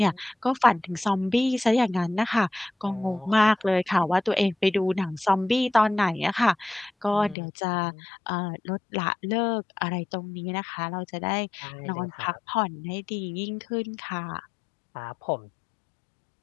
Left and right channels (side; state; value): right; drops out; at 7.4 s